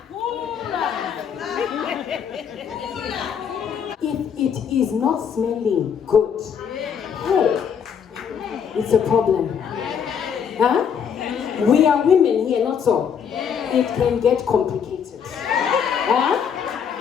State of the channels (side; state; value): right; quieter; 7.4 dB